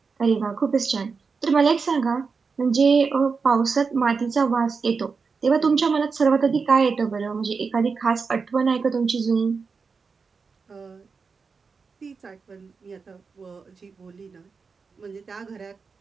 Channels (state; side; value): quieter; left; 5.0 dB